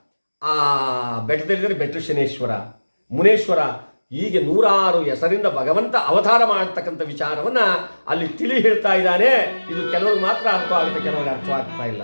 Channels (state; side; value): inverted; both; correlation -1.00